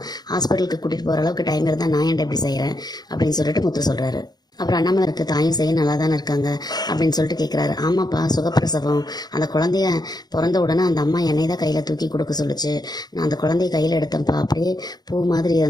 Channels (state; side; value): late; right; 0.19 ms